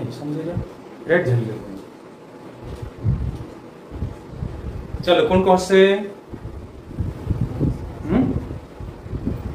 समझेगा रेड झल गया चलो कौन कौन से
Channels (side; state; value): both; identical; correlation 1.00